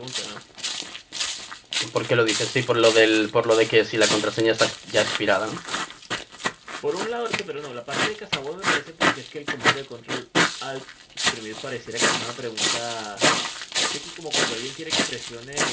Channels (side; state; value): both; identical; correlation 1.00